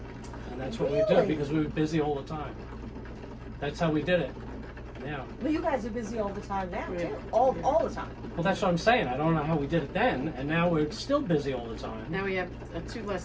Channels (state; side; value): identical; both; correlation 1.00